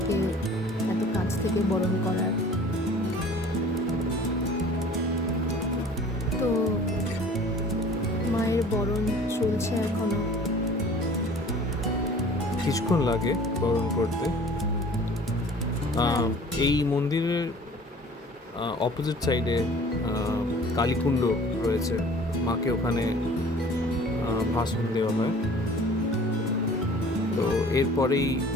এত কাছ থেকে বরণ করার। তো মায়ের বরণ চলছে এখনো। কিছুক্ষণ লাগে বরণ করতে। এই মন্দিরের অপোজিট সাইডে কালীকুণ্ড রয়েছে, মাকে ওখানে ভাষণ দেওয়া হয়। তো এরপরেই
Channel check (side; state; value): both; normal; correlation 0.48